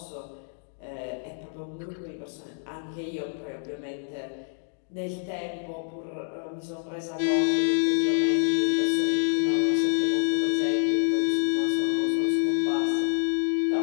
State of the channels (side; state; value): right; silent; digital silence